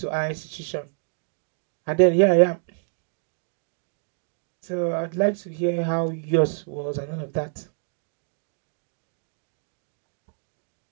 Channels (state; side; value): silent; left; 60 dB below the other